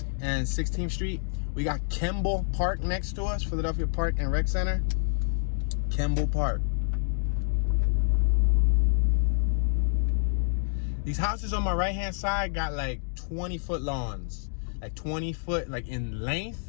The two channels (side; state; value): right; silent; digital silence